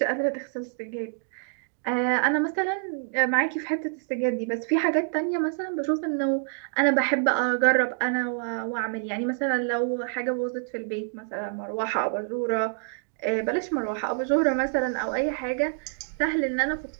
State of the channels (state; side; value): silent; left; digital silence